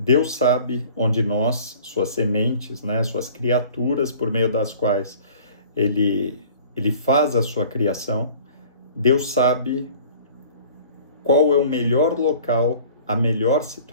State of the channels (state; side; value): inverted; both; correlation -0.49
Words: sabe onde nós, suas sementes, né, suas criaturas por meio das quais Ele faz a sua criação, Deus sabe qual é o melhor local, a melhor